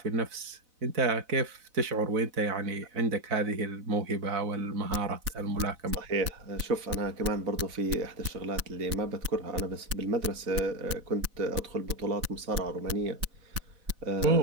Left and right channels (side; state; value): left; late; 4.0 ms